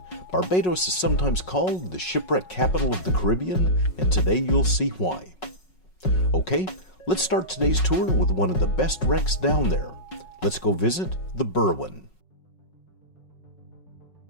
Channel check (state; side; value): late; right; 5.4 ms